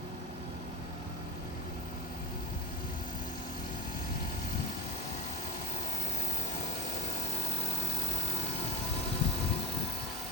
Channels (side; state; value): both; normal; correlation 0.48